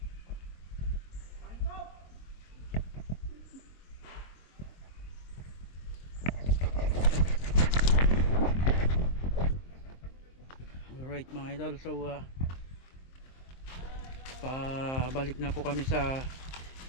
Alright mga idol, so pabalik na po kami sa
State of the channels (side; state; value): right; late; 23 ms